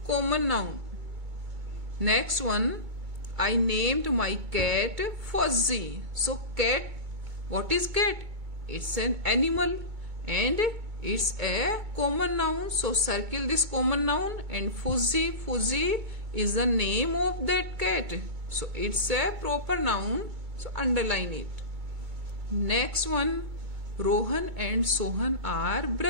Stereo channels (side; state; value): left; late; 2.2 ms